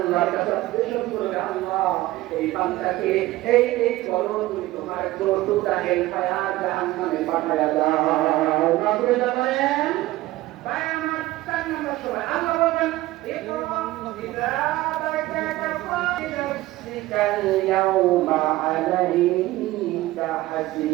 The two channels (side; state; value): left; quieter; 17.3 dB